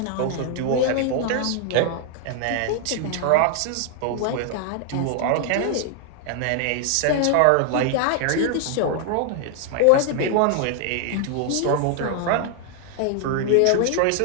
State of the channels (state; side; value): different; both; correlation 0.00